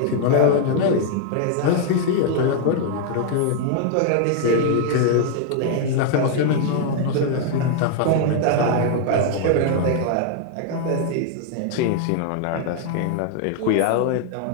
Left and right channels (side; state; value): both; different; correlation 0.00